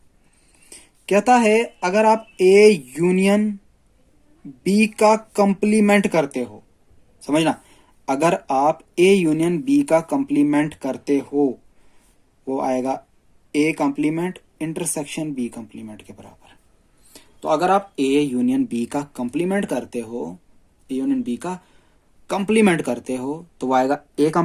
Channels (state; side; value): identical; both; correlation 1.00